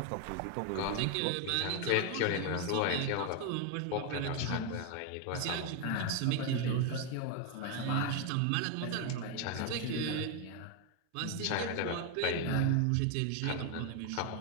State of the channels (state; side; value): different; both; correlation 0.01